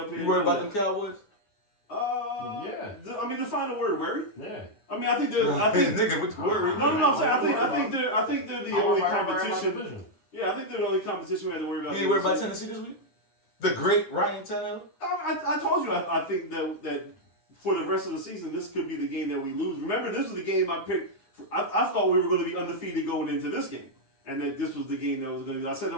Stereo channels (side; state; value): right; late; 10 ms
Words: here. You worried about them Cowboys? Yeah. I mean, define the word worry. Yeah. I think they're. Nigga, with the word. No, I'm saying. I think they're the only competition. Yeah, I think they're the only competition we had to worry about. You worried about Tennessee this week? The great Ryan Tannehill? I told you, I think that for the rest of the season, this could be the game that we lose. Remember, this was the game I picked. I thought we were going to be undefeated going into this game. And that this was the game that was going to be. I said it